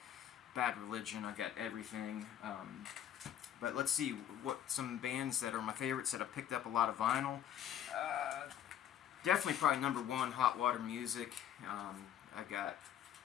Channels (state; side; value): quieter; right; 10.5 dB